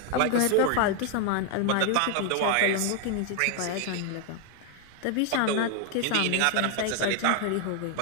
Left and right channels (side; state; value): both; different; correlation 0.00